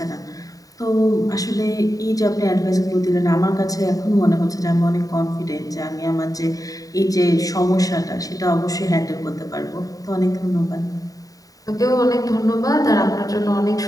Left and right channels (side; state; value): right; late; 0.17 ms